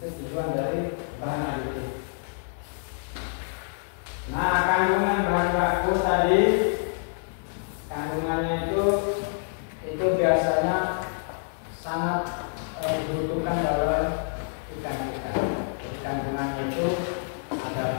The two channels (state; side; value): silent; right; digital silence